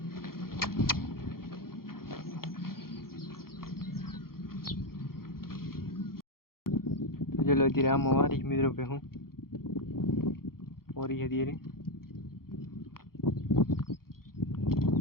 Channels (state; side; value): late; right; 0.93 ms